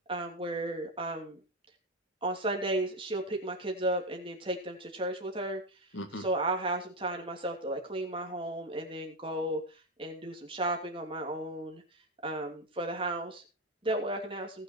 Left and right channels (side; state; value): both; normal; correlation 0.11